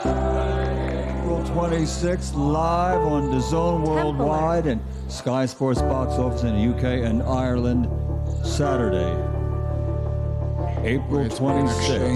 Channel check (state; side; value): identical; both; correlation 1.00